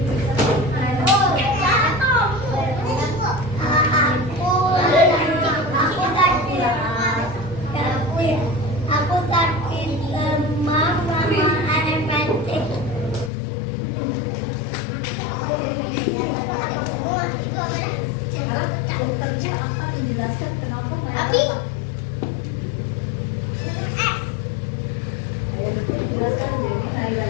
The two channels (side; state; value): right; drops out; at 13.3 s